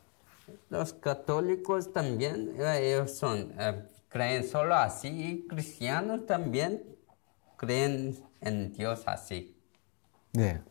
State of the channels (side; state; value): right; quieter; 37.0 dB